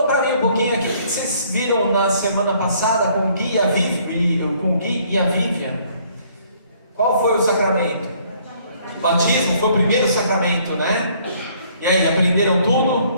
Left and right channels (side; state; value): both; inverted; correlation -0.62